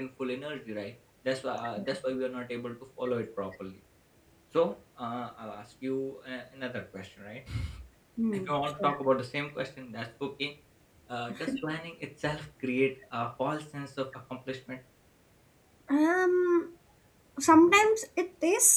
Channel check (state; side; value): identical; both; correlation 1.00